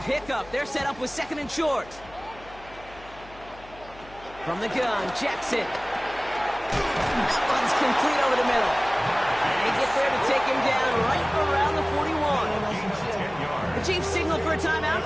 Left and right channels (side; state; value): left; noise; hum, 21 dB below the sound